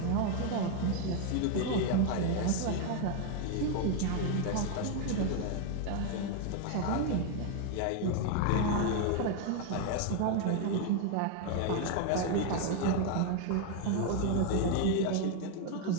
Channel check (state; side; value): different; both; correlation 0.01